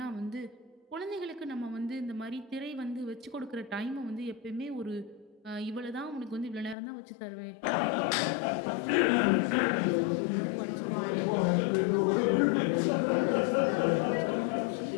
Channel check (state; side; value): drops out; right; at 6.8 s